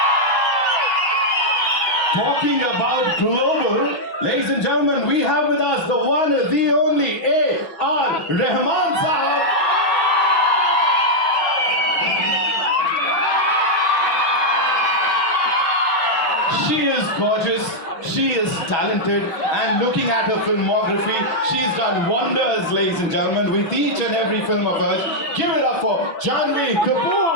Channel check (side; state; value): right; late; 5.8 ms